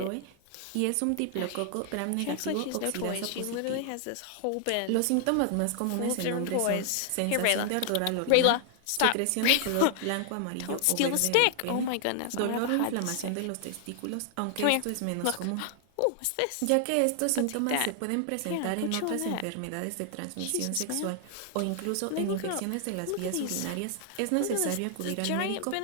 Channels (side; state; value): both; different; correlation 0.00